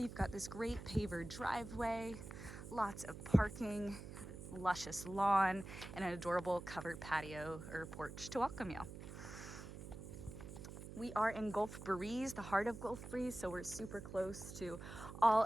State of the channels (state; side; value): noise; right; hum, 11 dB below the sound